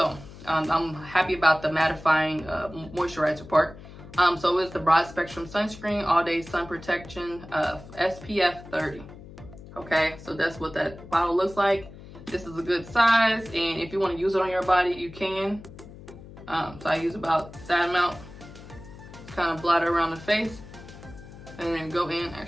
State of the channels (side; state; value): left; noise; hum, 17 dB below the sound